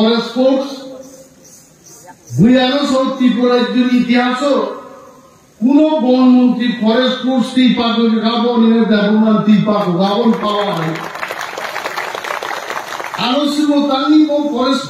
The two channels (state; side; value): identical; both; correlation 1.00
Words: ফোর্স বুয়ানো সব ত্রিপুরার ইতিহাস কোন বনমন্ত্রী ফরেস্ট ফোর্স ত্রিপাক গাবনের ব্যবহার ত্রিপাক গাবন পাওয়া হয় আলোচনা তানি ফরেস্ট